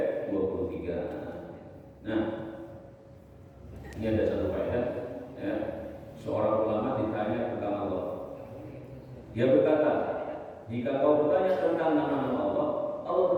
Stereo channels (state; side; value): identical; both; correlation 1.00